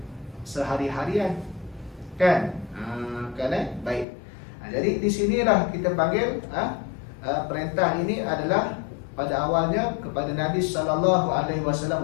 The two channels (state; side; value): drops out; right; at 4.0 s